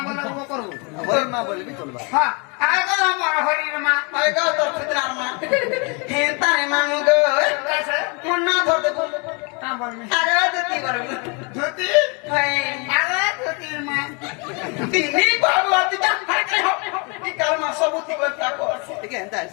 বলে ও করব বল মা বলবি চলবা হ্যাঁ আগো আমার হরির মা হায় গো তোর ফিতনার মা হেতা রে মাম গো কাছে মন না ধরতে তা বলবি আগে দিতি বলবো জ্যোতি হায় আগো জ্যোতির মা তিনি বাবু আতি যা হাইতে হো কি কারমা সবুতি করতা কো ঠিক আছে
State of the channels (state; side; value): quieter; right; 32.6 dB